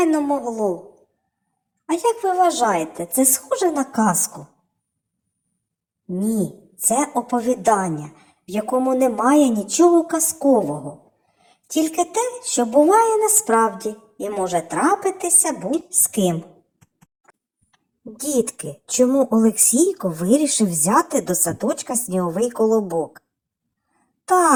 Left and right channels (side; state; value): both; identical; correlation 1.00